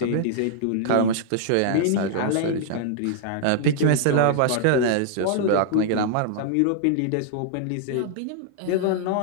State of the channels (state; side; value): different; both; correlation -0.01